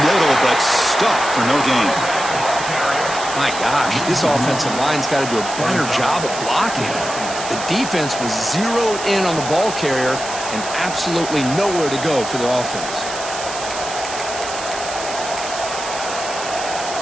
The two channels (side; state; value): right; noise; hiss, 9 dB below the sound